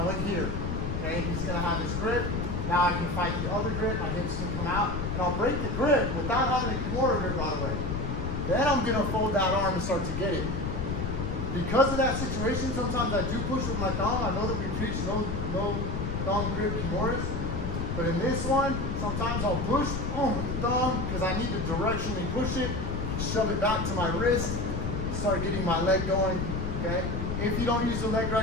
went here. Okay, he's gonna have his grip. Now I can fight the other grip, my hips can come out, and I'll break the grip without having a Kimura grip right away. Then I'm gonna fold that arm and start to get it. Because of that situation, sometimes I do push with my thumb. I know that we preach no thumb grip Kimuras, but in this one, sometimes I'll push with the thumb because I need to directionally push it, shove it back to my wrist, start getting my leg going, okay? If you don't use the leg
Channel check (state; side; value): noise; left; rumble, 2 dB below the sound